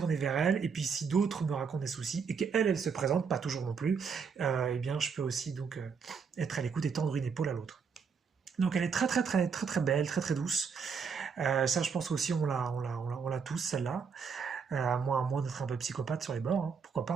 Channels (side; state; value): left; quieter; 5.9 dB